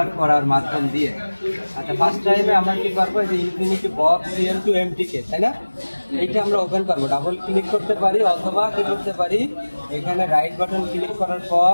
করার মাধ্যম দিয়ে। আচ্ছা, ফার্স্ট টাইমে আমরা কি করবো, এই যে ইনফিনিটি বক্স সিএম টু এমটিকে, তাই না? এইটা আমরা ওপেন করবো, ডাবল ক্লিক করতে পারি অথবা কি করতে পারি, এখানে রাইট বাটন ক্লিক করার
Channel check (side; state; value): both; inverted; correlation -1.00